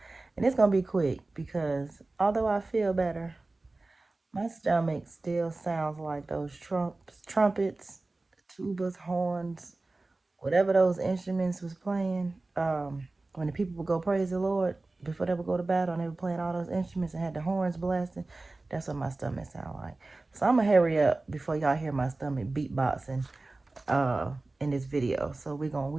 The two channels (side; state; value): left; quieter; 3.2 dB